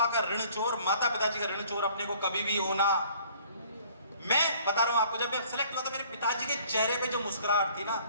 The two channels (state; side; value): inverted; both; correlation -0.56